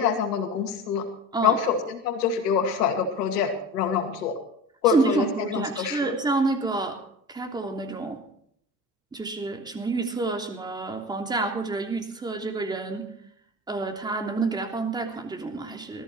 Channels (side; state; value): both; normal; correlation 0.33